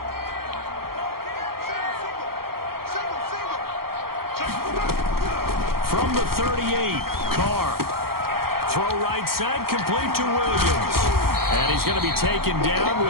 From the 38, Carr. Throw right side, complete to Williams. And he's going to be taken down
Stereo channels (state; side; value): late; left; 0.94 ms